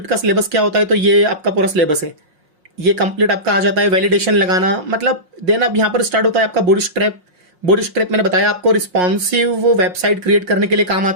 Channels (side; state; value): left; late; 5.6 ms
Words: का सिलेबस क्या होता है, तो ये आपका पूरा सिलेबस है, ये कंप्लीट आपका आ जाता है। वैलिडेशन लगाना, मतलब देन अब यहाँ पर स्टार्ट होता है आपका बूटस्ट्रैप। बूटस्ट्रैप मैंने बताया आपको रिस्पॉन्सिव वेबसाइट क्रिएट करने के लिए काम